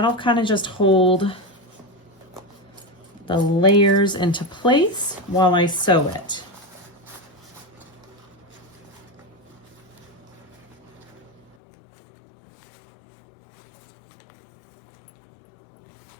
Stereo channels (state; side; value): drops out; right; at 11.6 s